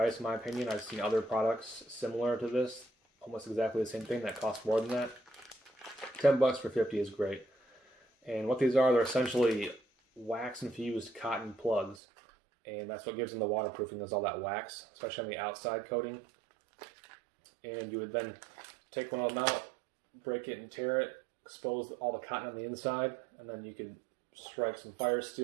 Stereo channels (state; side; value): drops out; left; at 12.0 s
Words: in my opinion. I've seen other products similar to this, almost exactly the same thing that cost more than that. 10 bucks for 50 is great. And what these are, they're essentially wax infused cotton plugs. And that's what gives them the waterproofing, is all that wax, especially on the outside coating. And you would then take one of them out, break it and tear it, expose all the cotton on the inside, and then you could strike some fire